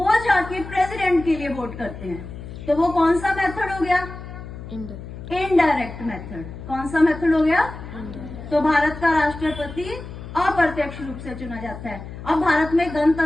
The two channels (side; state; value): left; noise; hum, 12 dB below the sound